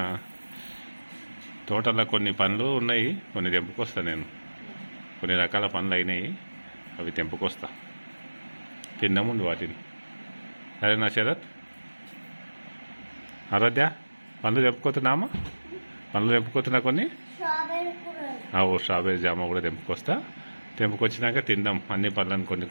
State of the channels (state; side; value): inverted; both; correlation -1.00